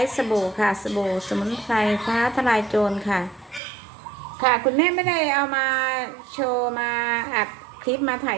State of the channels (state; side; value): drops out; left; at 3.6 s